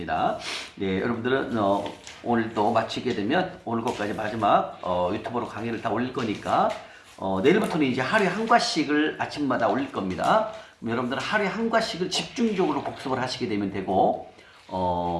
네, 여러분들은 오늘 또 마치게 되면 오늘 것까지 마지막 유튜브로 강의를 다 올릴 거니까 내일부터는 이제 하루에 한 과씩을 아침마다 올릴 겁니다. 그럼 여러분들은 하루에 한 과씩을 집중적으로 복습을 하시게 되면 되고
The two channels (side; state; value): both; identical; correlation 1.00